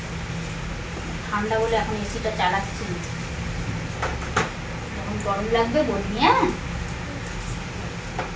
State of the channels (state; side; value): identical; both; correlation 1.00